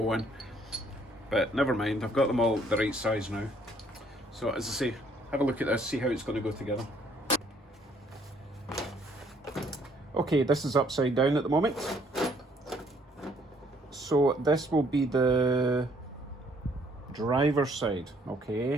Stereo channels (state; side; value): normal; both; correlation 0.64